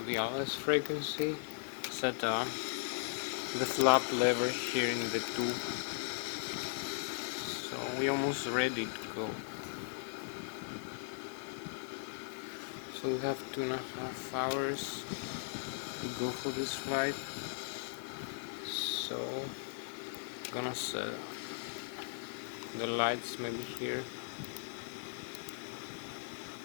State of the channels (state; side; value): silent; right; digital silence